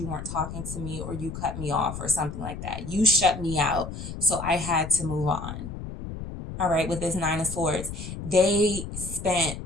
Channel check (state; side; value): noise; left; rumble, 8 dB below the sound